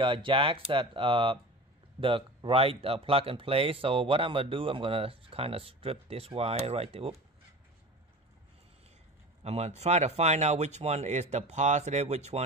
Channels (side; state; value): both; normal; correlation 0.35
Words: jacks that the right plug and play. So what I'm gonna do, I'm gonna kind of strip this wire right there. Whoop. I'm gonna try to find out which one is the positive, which